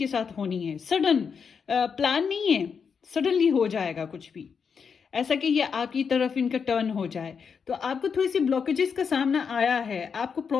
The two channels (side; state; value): right; quieter; 6.2 dB